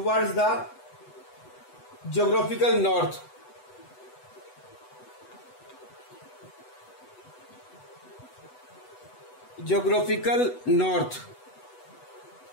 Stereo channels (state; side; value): late; right; 8.0 ms